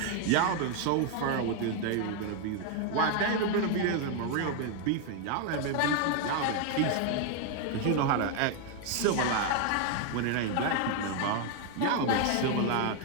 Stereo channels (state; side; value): different; both; correlation 0.01